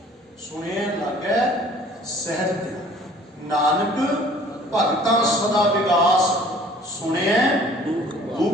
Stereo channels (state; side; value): normal; both; correlation 0.52